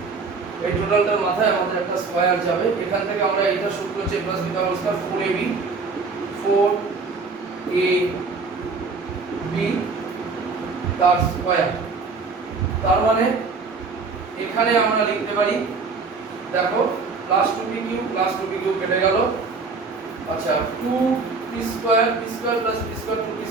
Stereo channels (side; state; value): left; quieter; 4.4 dB